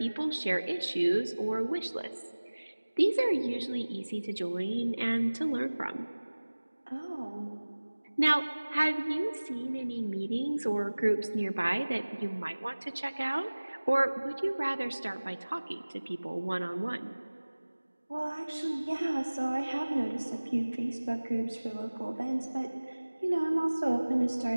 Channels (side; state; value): both; inverted; correlation -1.00